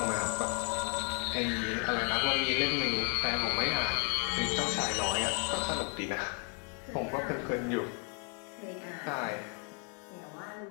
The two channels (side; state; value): right; quieter; 39.8 dB